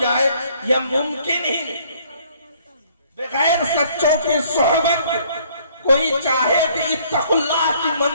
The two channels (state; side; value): inverted; both; correlation -0.61